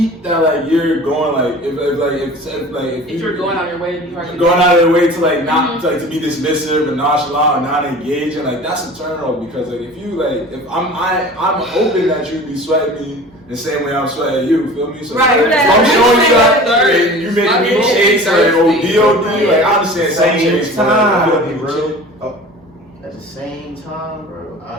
that like you're going like if you're going out of your way to be hard to going out of your way to like not like to be dismissive and nonchalant and not engaging, like that's a turn off because like if you like if I'm hoping that you be sweating me the same way I'm sweating you, feel me? So Right, if I'm showing you that and you making me chase like ODOD, like I understand some chase, but like, I'll be real. At the same time, bro,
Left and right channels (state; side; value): normal; both; correlation 0.40